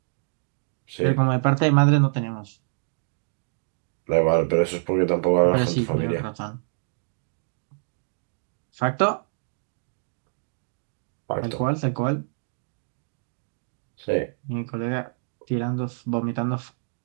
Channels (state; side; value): silent; left; digital silence